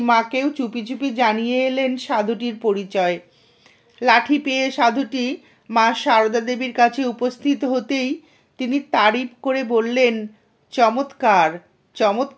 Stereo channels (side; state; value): both; identical; correlation 1.00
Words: চুপি চুপি জানিয়ে এলেন সাধুটির পরিচয়। লাঠি পেয়ে সাধুটি মা সারদা দেবীর কাছে উপস্থিত হতেই তিনি তারিফ করে বললেন, চমৎকার,